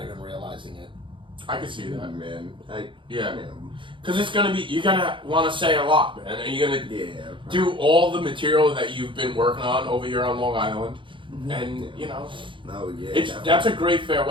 even realizing it. I can see that. Man, Yeah. Because it's gonna be, you're gonna want to say a lot, man. And you're gonna do all the material that you've been working on over here on Long Island. And, you know, that's a great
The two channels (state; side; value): late; left; 0.24 ms